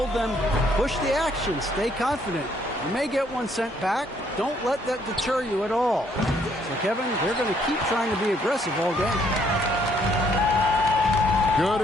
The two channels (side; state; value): both; normal; correlation 0.67